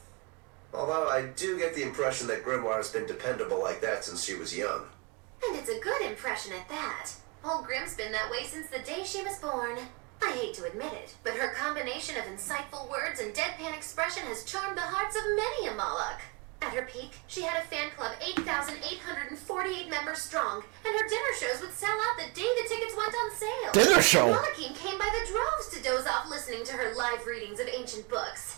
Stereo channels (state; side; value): quieter; left; 29.2 dB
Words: Although I do get the impression that Grimoire has been dependable like that since she was young. And it's a good impression at that. Old Grim's been that way since the day she was born. I hate to admit it, but her combination of insightful words and deadpan expression has charmed the hearts of many a Moloch. At her peak, she had a fan club 8,848 members strong, and her dinner shows would sell out the day the tickets went on sale. Dinner show? Molochine came by the droves to doze off listening to her live readings of ancient